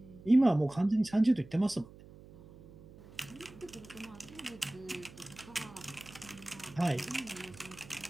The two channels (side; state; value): right; noise; hum, 20 dB below the sound